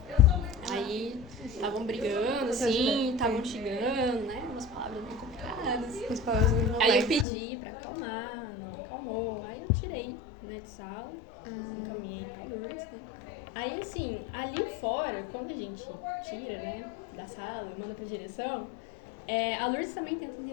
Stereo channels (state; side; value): drops out; right; at 7.2 s